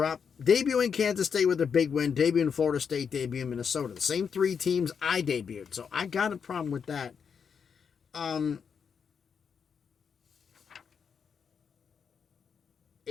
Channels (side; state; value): right; quieter; 6.6 dB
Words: Kansas State with a big win, debuting Florida State, debuting Minnesota. The same 3 teams I debuted, so I got a problem with that.